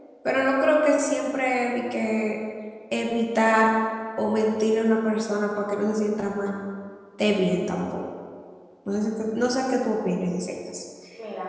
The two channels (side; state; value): both; identical; correlation 1.00